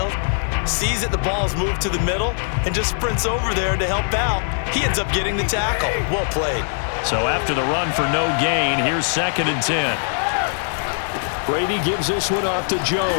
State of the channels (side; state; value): right; silent; digital silence